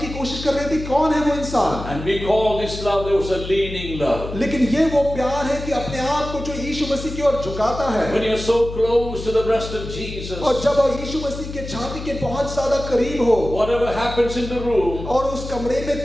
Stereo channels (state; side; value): noise; left; hum, 9 dB below the sound